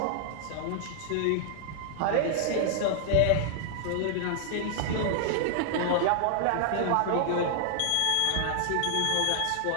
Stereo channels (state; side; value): different; both; correlation 0.00